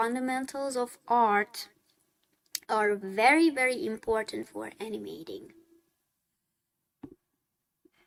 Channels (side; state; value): both; identical; correlation 1.00